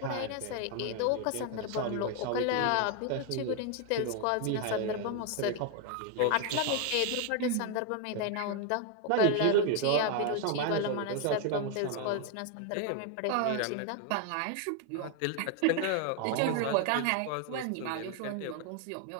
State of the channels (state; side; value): different; both; correlation 0.01